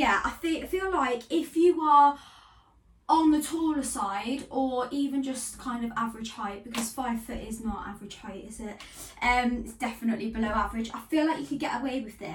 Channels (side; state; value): both; identical; correlation 1.00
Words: I feel like if you are on the taller side or even just kind of average height, because 5 foot is not average height, is it? It's definitely below average. I feel like you could get away with